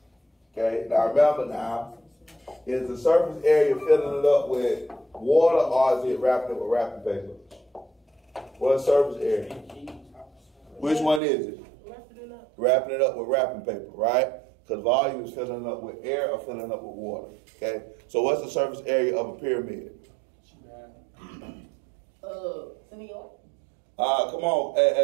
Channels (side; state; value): left; drops out; at 11.2 s